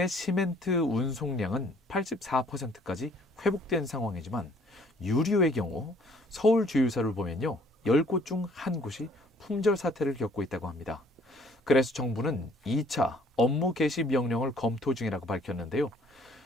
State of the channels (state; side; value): normal; both; correlation 0.59